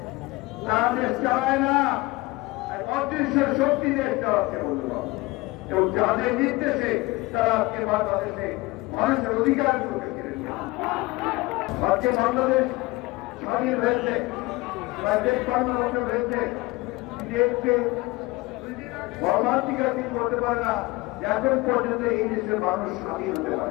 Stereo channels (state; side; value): quieter; right; 21.8 dB